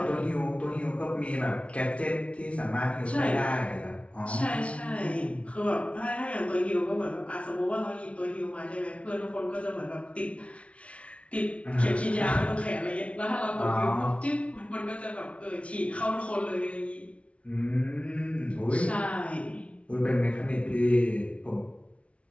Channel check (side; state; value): right; late; 0.062 ms